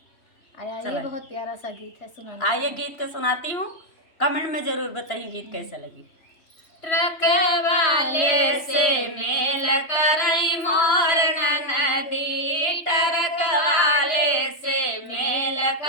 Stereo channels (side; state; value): right; late; 3.1 ms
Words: ये बहुत प्यारा सा गीत है, सुनाना। आइए गीत के सुनाती हूँ, कमेंट में जरूर बताइए गीत कैसे लगी। ट्रक वाले से मेल करई मोर ननदी, ट्रक वाले से मेल